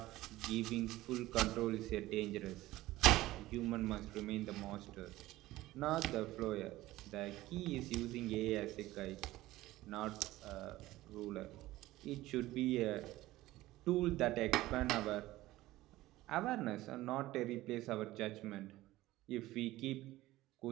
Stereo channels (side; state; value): left; quieter; 17.0 dB